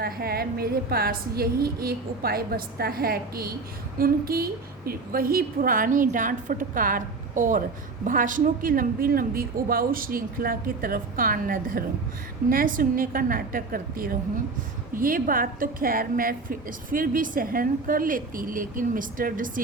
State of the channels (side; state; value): left; quieter; 4.0 dB